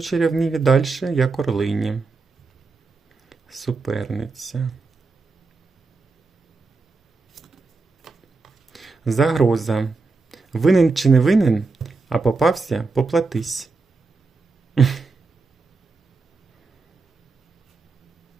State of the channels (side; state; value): left; quieter; 4.0 dB